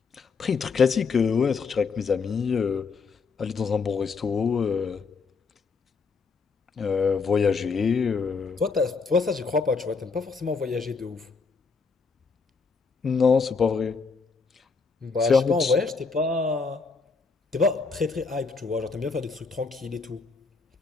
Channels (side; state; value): right; quieter; 4.7 dB